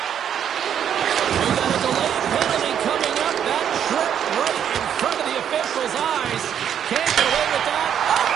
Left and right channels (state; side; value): quieter; left; 9.0 dB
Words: We got a delayed penalty coming up. That trip right in front of the official's eyes. Can't get away with that. Up